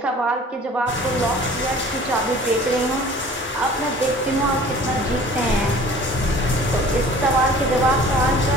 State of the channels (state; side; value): normal; both; correlation 0.47